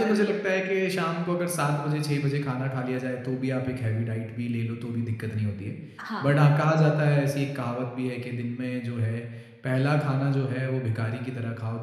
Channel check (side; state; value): both; identical; correlation 1.00